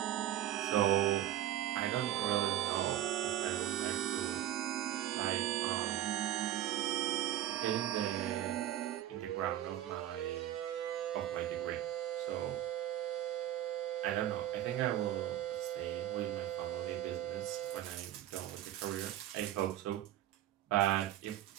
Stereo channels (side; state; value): left; quieter; 12.8 dB